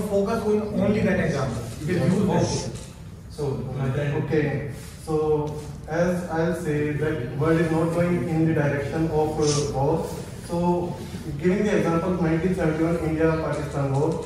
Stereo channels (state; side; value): identical; both; correlation 1.00